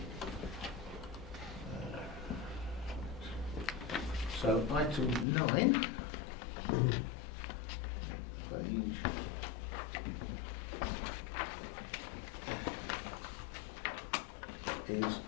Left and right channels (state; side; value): drops out; right; at 5.2 s